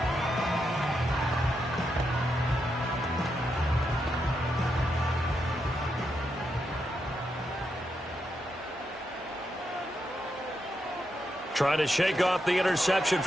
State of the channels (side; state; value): both; normal; correlation 0.83